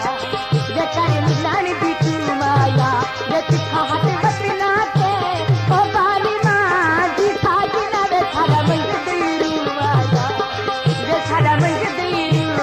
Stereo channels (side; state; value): both; identical; correlation 1.00